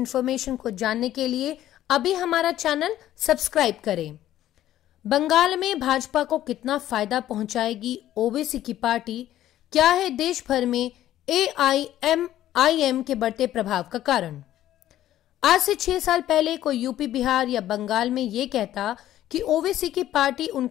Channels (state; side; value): quieter; right; 13.0 dB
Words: को जानने के लिए अभी हमारा चैनल सब्सक्राइब करें। बंगाल में भाजपा को कितना फायदा पहुंचाएगी ओवैसी की पार्टी? क्या है देश भर में AIMIM के बढ़ते प्रभाव का कारण? आज से 6 साल पहले कोई यूपी, बिहार या बंगाल में ये कहता कि ओवैसी की पार्टी